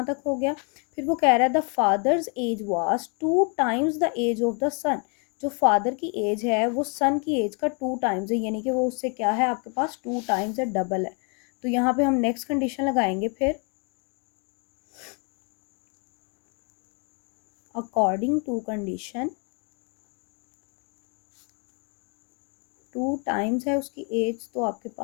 तक हो गया। फिर वो कह रहा है the father's age was 2 times the age of the son. जो फादर की एज है वो सन की एज का 2 टाइम्स है, यानी कि वो उससे क्या है, आपके पास 2 टाइम्स है, डबल है। तो यहाँ पे हम नेक्स्ट कंडीशन लगाएंगे। फिर अकॉर्डिंग टू कंडीशन 2 टाइम्स है उसकी एज, तो आपके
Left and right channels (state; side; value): quieter; right; 36.6 dB